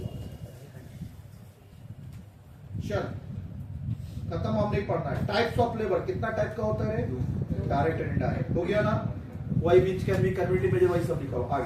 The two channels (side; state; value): both; identical; correlation 1.00